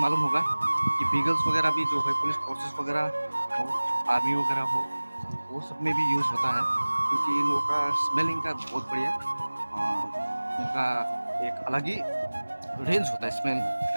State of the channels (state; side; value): inverted; both; correlation -1.00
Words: मालूम होगा कि बीगल्स वगैरह भी जो है पुलिस फोर्सेस वगैरह हो, आर्मी वगैरह हो, वो सब में भी यूज़ होता है, क्योंकि इन लोगों का स्मेलिंग का बहुत बढ़िया इनका एक अलग ही रेंज होता है स्मेल